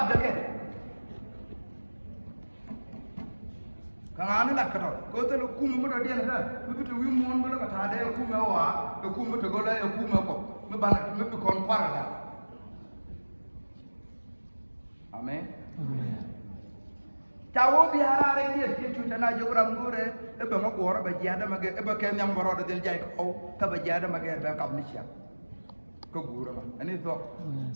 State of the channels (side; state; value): both; inverted; correlation -1.00